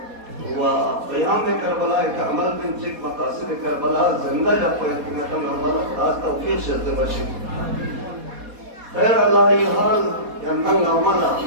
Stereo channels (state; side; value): late; left; 4.2 ms